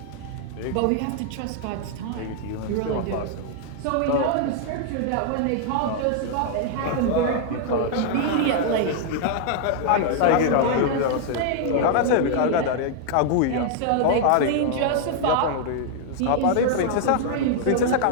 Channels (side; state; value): both; different; correlation 0.00